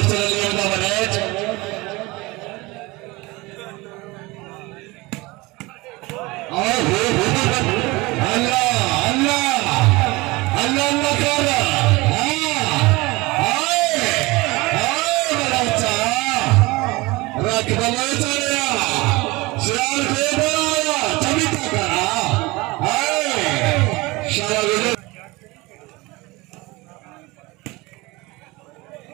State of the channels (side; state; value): left; quieter; 22.7 dB